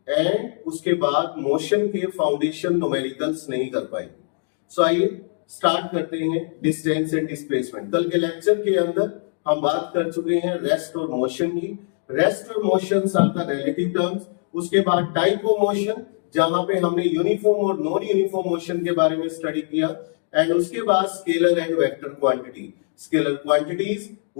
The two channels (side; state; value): right; silent; 64 dB below the other